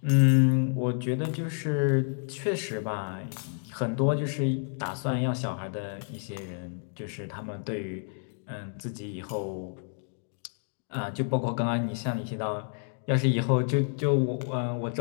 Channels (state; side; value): silent; right; 58 dB below the other